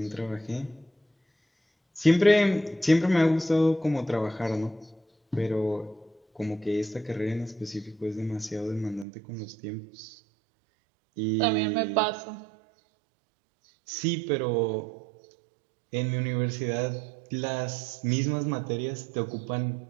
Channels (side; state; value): left; drops out; at 9.1 s